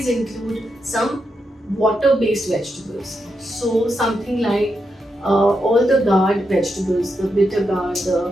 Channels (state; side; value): normal; both; correlation 0.84